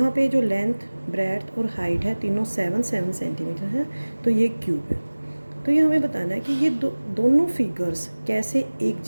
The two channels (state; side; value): inverted; both; correlation -1.00